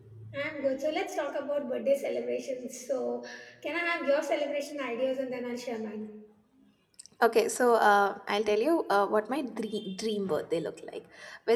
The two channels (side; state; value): both; identical; correlation 1.00